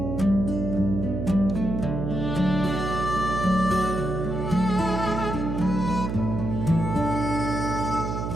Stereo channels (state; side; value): noise; right; hum, 3 dB below the sound